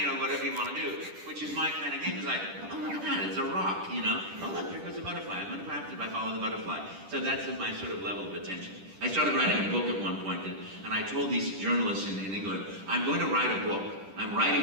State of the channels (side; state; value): left; late; 10 ms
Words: know, whatever you want to do, which is my kind of game. It's like, oh look at that, it's a rock, you know. Oh look, there goes a butterfly. I'm gonna craft it if I follow the butterfly. So that's my sort of level of attention. I started writing a book at one point, and I told these journalists in England, I'm going to write a book. I'm